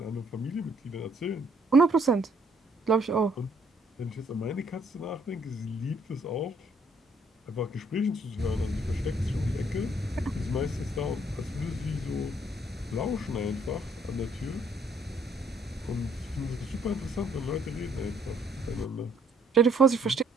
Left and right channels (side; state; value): both; normal; correlation 0.65